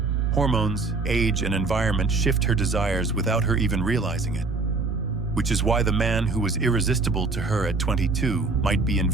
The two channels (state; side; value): quieter; left; 3.8 dB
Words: Hormones, age, and environment shift her desires without her even realizing it. Which is why the man who was irresistible to her at 22 might be